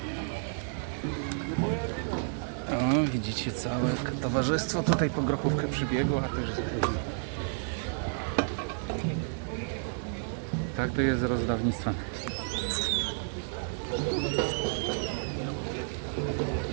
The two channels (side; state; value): left; silent; 57 dB below the other